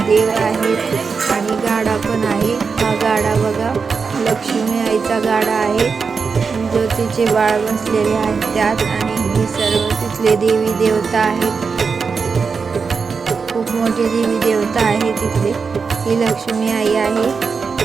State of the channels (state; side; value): quieter; left; 5.2 dB